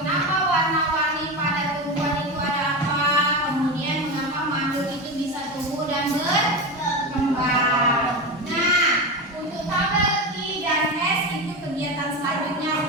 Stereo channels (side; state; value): both; normal; correlation 0.20